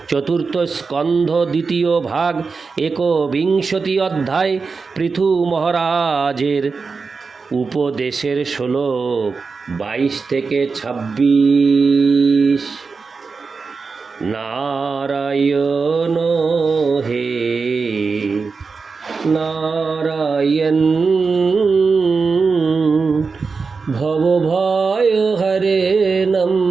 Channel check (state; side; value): quieter; left; 4.7 dB